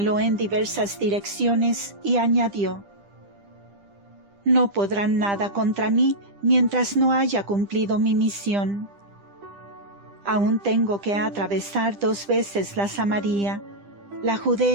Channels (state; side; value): late; left; 10 ms